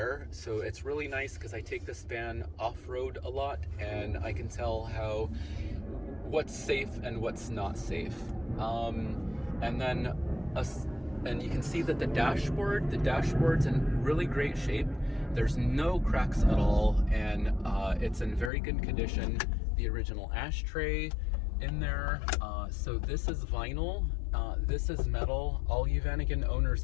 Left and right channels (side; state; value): right; drops out; at 18.5 s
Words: So it's really nice because I take this van off-road a lot, and I can tell what's safe and what's not safe. And you can see that the dashboard's in really great shape. There's no cracks at all, and it's in very good condition. The original ashtray in there. So this is vinyl, this is metal. All you Vanagon owners